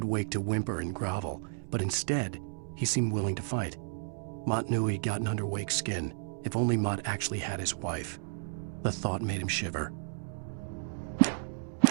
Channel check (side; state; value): left; silent; digital silence